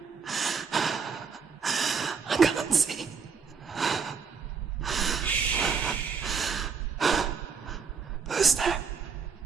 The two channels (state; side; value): quieter; left; 5.8 dB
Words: I can't see. Who's there?